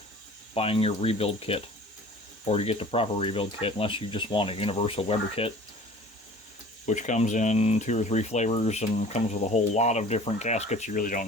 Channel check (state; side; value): normal; both; correlation 0.46